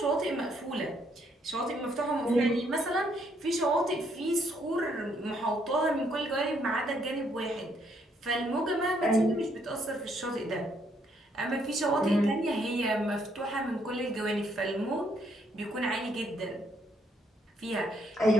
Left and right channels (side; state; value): both; normal; correlation 0.71